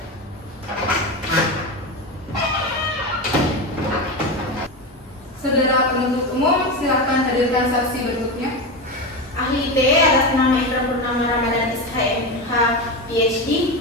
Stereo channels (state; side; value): normal; both; correlation 0.18